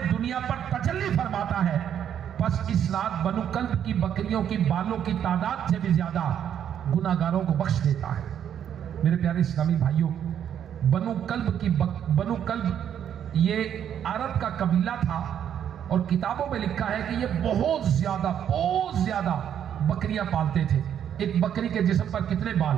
دنیا پر تجلی فرماتا ہے، پس اس رات بنو کلب کی بکریوں کی بالوں کی تعداد سے بھی زیادہ گناہگاروں کو بخش دیتا ہے۔ میرے پیارے اسلامی بھائیوں، بنو کلب یہ عرب کا قبیلہ تھا، اور کتابوں میں لکھا ہے کہ یہ بہت زیادہ بکریاں پالتے تھے۔ ایک بکری کے جسم پر کتنے بال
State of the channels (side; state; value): left; quieter; 9.3 dB